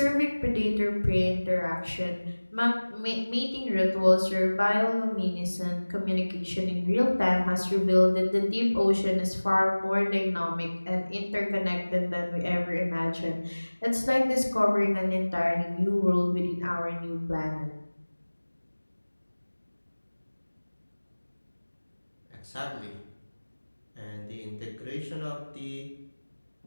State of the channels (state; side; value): inverted; both; correlation -1.00